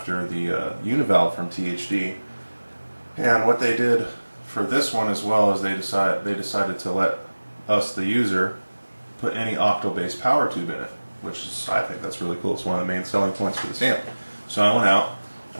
the Univalve from THD, and what they did for this one as well is they decided to let us, the user, put any octal-based power tube in it, which is, I think that's really cool. It's one of the main selling points for this amp. So I went out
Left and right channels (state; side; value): inverted; both; correlation -1.00